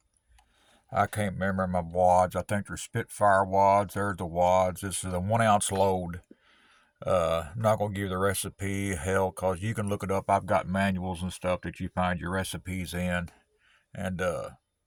I can't remember my wads. I think they're Spitfire wads. There's the wads. This is a 1 ounce load. I'm not gonna give you the recipe, hell, cause you can look it up. I've got manuals and stuff that you find your recipes in, and to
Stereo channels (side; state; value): both; identical; correlation 1.00